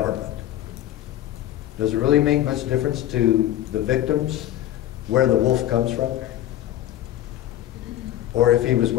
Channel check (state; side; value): quieter; right; 13.0 dB